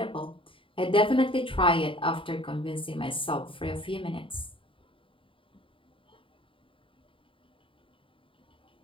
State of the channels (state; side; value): late; right; 0.25 ms